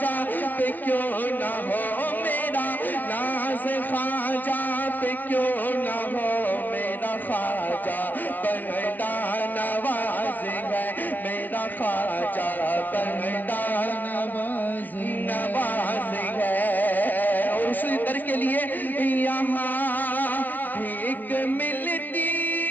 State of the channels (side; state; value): right; late; 0.089 ms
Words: پہ کیوں نہ ہو، میرا ناز خواجہ پہ کیوں نہ ہو، میرا خواجہ بندہ نواز ہے، میرا خواجہ بندہ نواز ہے، اور اسی در کے لیے یہاں بھیک ملتی